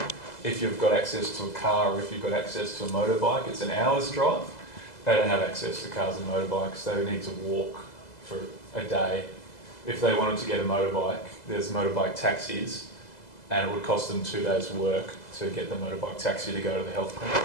if you've got access to a car or if you've got access to a motorbike, it's an hour's drive. They don't have access to cars and motorbikes. They need to walk for a day. If they wanted to get a motorbike, there's motorbike taxis, and it would cost them 2 days' work to get the motorbike taxi to go to the health clinic,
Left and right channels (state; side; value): late; right; 2.0 ms